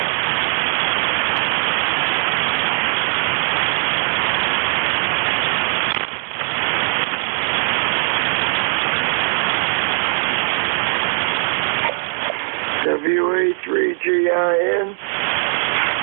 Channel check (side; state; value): left; silent; digital silence